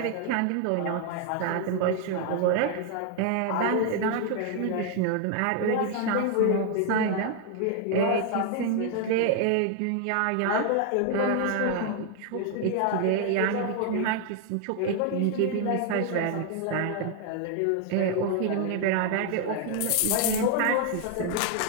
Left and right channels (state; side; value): different; both; correlation 0.00